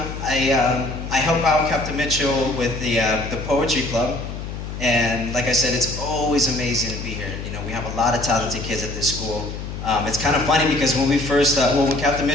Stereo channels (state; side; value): noise; left; hum, 8 dB below the sound